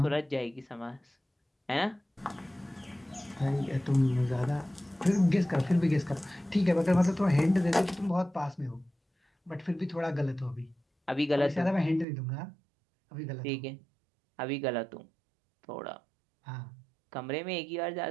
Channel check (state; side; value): drops out; left; at 12.1 s